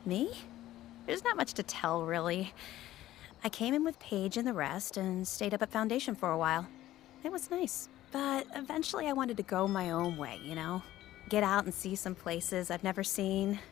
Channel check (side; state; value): right; quieter; 14.5 dB